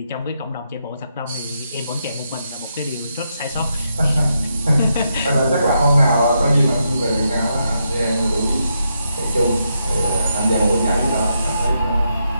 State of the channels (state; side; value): inverted; both; correlation -0.82